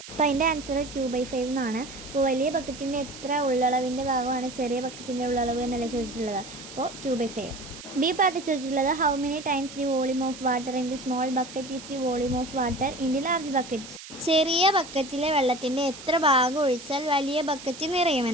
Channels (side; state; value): right; noise; hiss, 15 dB below the sound